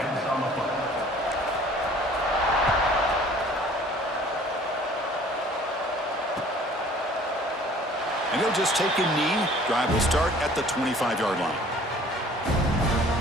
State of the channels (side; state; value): both; normal; correlation 0.52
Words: And he'll just take a knee. Drive will start at the 25-yard line.